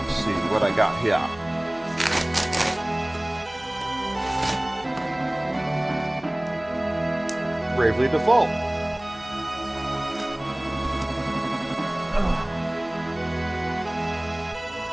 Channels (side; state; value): left; noise; hum, 24 dB below the sound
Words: Let's see what I got here. Bravely Default.